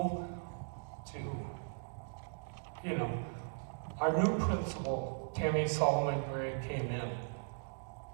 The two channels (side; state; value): left; silent; digital silence